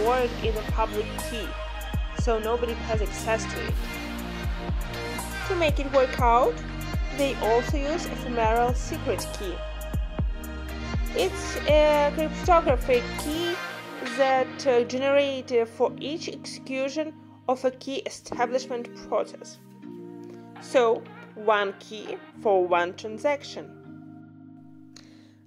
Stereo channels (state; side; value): identical; both; correlation 1.00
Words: in a public key, so nobody has access to it. To make it work out, they also use ephemeral secret key. It's a cryptographic key that generated for each execution of a key establishment process. So, one key for one transaction.